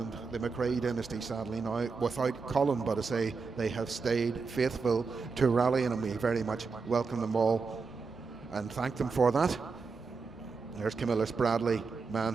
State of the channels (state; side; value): quieter; left; 4.7 dB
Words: the McRae dynasty sadly now without Colin, but I say they have stayed faithful to rallying, and we very much welcome them all and thank them for that. There's Camillus Bradley,